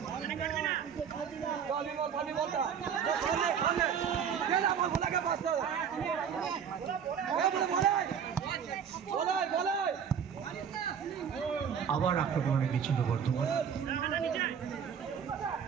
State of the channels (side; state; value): left; quieter; 7.7 dB